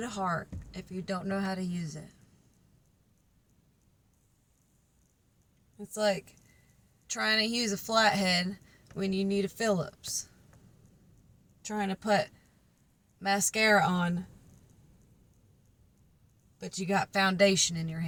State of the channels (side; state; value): both; identical; correlation 1.00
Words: heart if you don't know how to use it? It's like trying to use a flathead when you need a Phillips. Trying to put mascara on, but you got foundation in your